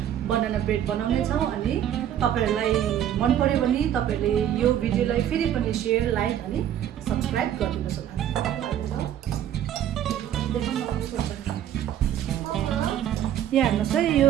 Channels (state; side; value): quieter; left; 10.7 dB